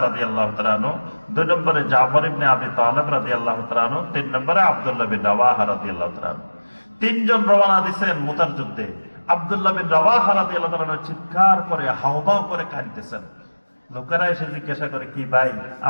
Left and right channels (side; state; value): both; inverted; correlation -1.00